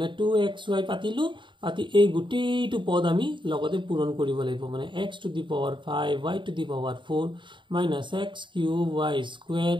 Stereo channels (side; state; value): left; late; 0.23 ms